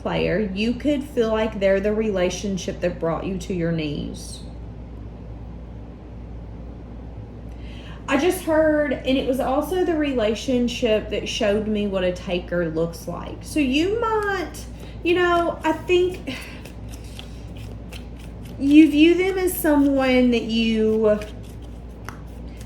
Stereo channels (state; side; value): identical; both; correlation 1.00